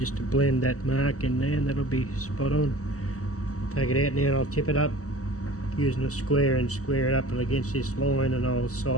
to blend that mark in there, and that'll be spot on. Take it out now and I'll tip it up using a square and square it up against this line, and I'll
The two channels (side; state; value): right; late; 0.66 ms